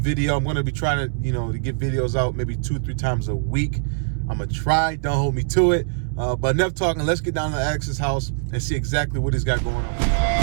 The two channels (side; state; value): left; silent; 64 dB below the other